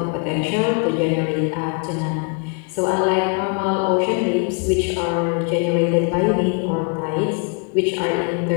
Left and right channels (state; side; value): quieter; right; 35.1 dB